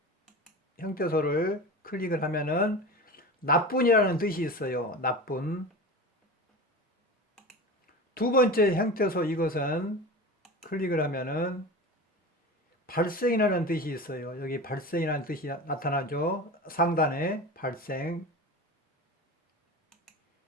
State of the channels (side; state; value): both; normal; correlation 0.30